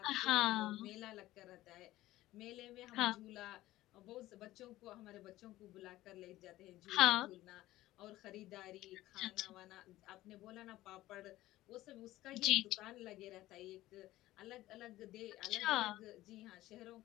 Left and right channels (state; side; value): quieter; right; 16.2 dB